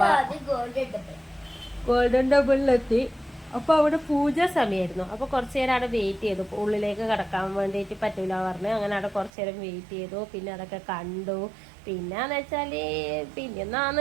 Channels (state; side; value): drops out; left; at 9.3 s